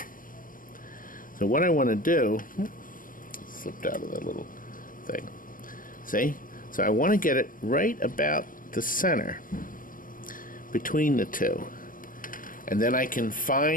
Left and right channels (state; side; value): late; right; 0.40 ms